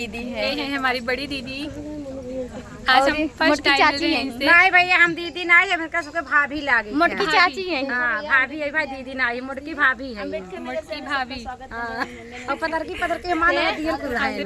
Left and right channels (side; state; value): both; identical; correlation 1.00